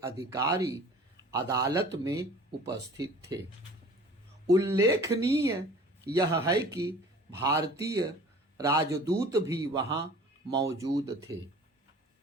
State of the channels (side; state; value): both; normal; correlation 0.45